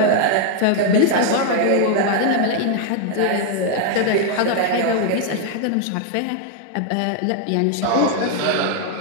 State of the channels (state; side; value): different; both; correlation 0.00